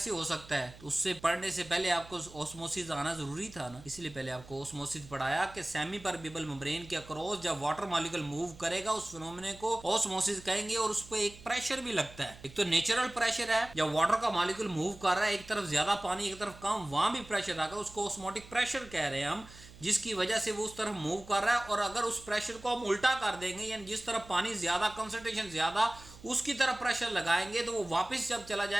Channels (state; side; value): noise; right; hum, 19 dB below the sound